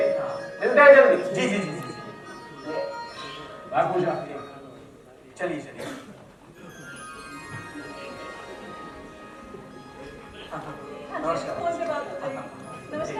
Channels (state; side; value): identical; both; correlation 1.00